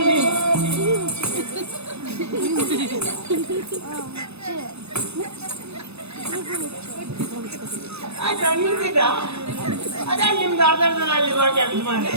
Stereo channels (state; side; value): late; left; 0.79 ms